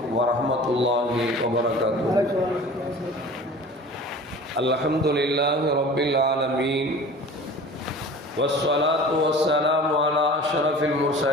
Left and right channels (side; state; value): both; normal; correlation 0.41